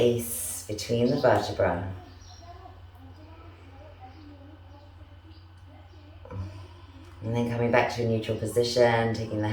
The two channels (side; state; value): both; identical; correlation 1.00